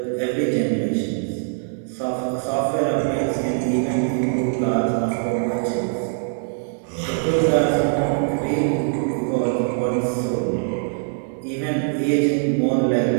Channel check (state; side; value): silent; left; digital silence